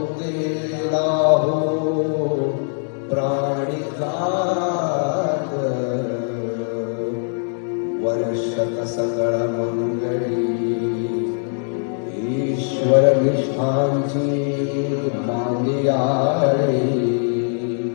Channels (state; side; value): silent; right; 65 dB below the other